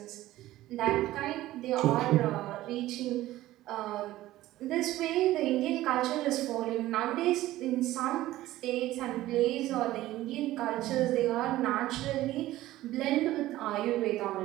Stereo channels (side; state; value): left; quieter; 15.6 dB